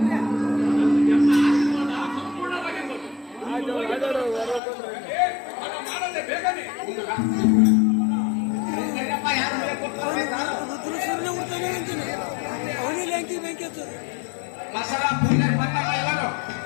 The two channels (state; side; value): drops out; right; at 4.6 s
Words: ನಮ್ಮ ಆಶೀರ್ವಾದ ಸಂಪೂರ್ಣವಾಗಿರ್ಬೋದು. ಹಣ ಮಾಡದೆ ಬೇಗನೆ ಮಸಾಲ ಪೂಜೆ ಬಂದಾಗ ಎಲ್ಲರೂ